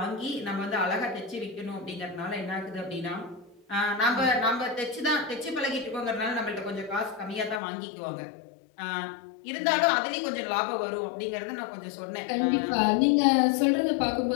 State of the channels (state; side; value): drops out; right; at 7.6 s